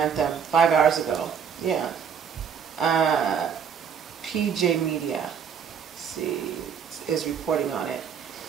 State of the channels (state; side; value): quieter; left; 7.3 dB